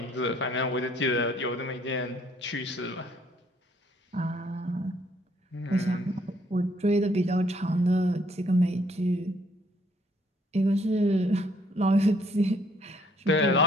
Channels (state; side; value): normal; both; correlation 0.65